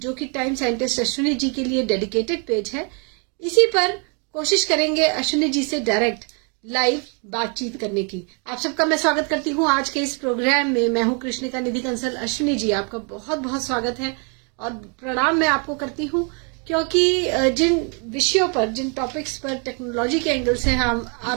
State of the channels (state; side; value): quieter; left; 37.2 dB